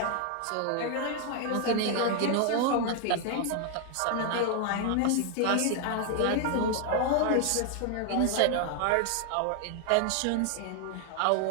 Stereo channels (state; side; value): different; both; correlation 0.00